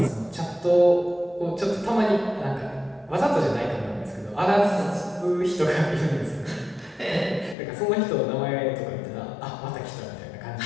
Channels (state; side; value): drops out; right; at 7.6 s